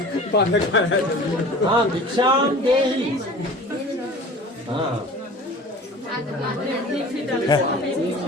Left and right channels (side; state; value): both; normal; correlation 0.41